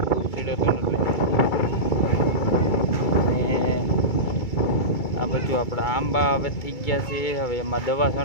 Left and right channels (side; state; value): right; late; 2.3 ms